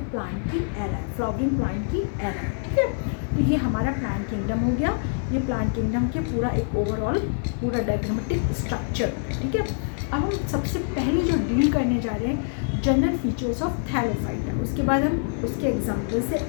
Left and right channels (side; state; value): right; silent; digital silence